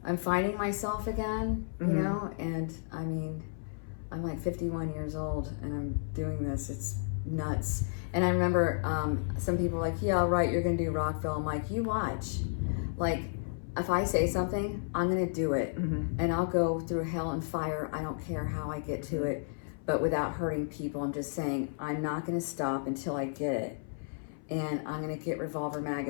I'm finding myself again, you know, and I mean, I'm like 51 years old and I'm doing this. It's nuts. And I remember some people were like, yeah, right, you're going to do Rockville. I'm like, you watch. Like, if I say something, I'm going to do it. And I'll go through hell and fire. I don't care how I get to it, but without hurting people. I'm just saying, I'm not going to stop until I get it. And I'm going to get Revolver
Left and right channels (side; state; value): right; silent; 56 dB below the other